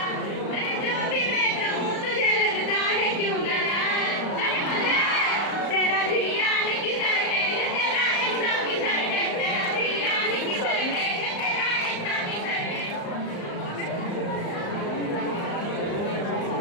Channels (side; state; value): right; late; 35 ms